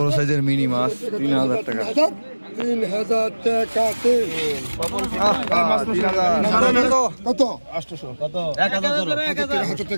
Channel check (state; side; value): inverted; both; correlation -1.00